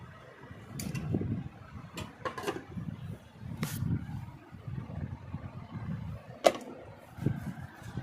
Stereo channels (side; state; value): both; identical; correlation 1.00